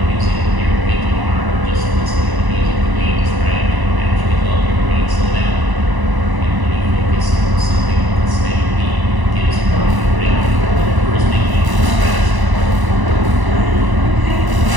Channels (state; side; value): late; left; 1.0 ms